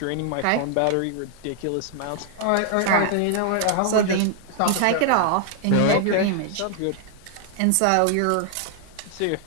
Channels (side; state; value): both; different; correlation 0.00